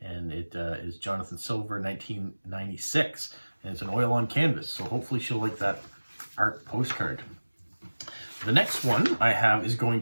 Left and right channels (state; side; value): inverted; both; correlation -1.00